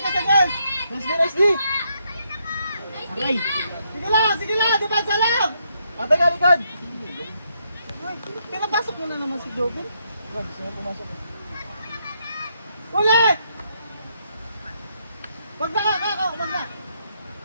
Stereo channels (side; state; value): both; inverted; correlation -0.77